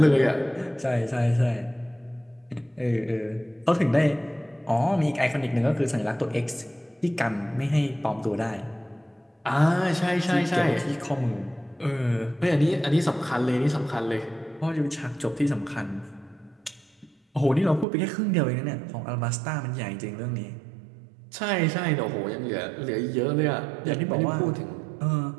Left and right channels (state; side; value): drops out; left; at 17.9 s